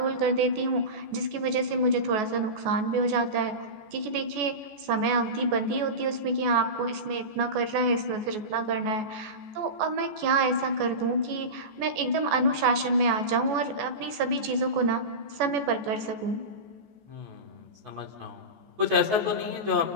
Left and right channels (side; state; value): left; late; 14 ms